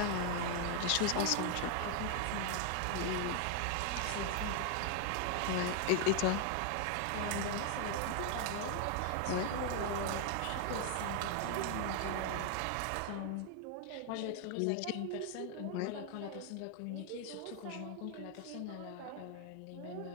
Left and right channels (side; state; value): both; different; correlation 0.00